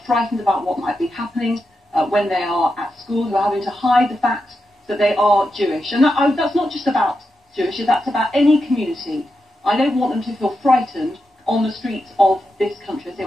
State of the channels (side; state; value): both; normal; correlation 0.87